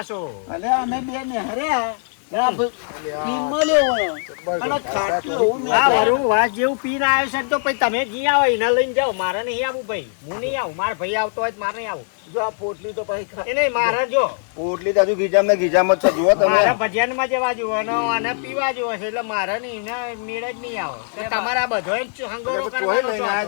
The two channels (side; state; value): right; silent; 63 dB below the other